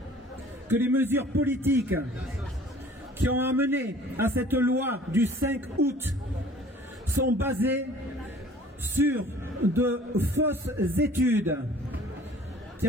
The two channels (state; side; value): normal; both; correlation 0.50